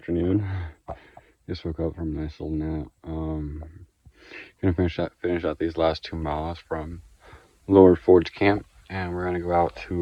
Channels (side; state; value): both; identical; correlation 1.00